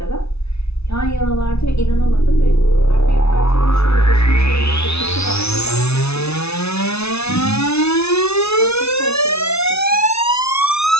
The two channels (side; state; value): right; late; 0.80 ms